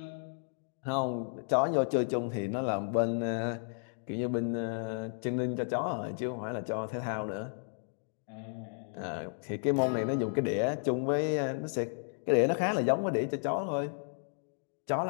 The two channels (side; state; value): right; silent; digital silence